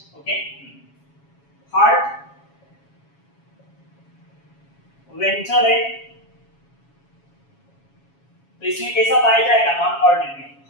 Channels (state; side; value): late; right; 7.2 ms